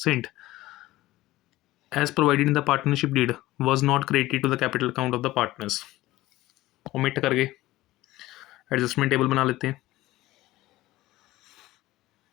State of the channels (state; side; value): quieter; right; 17.2 dB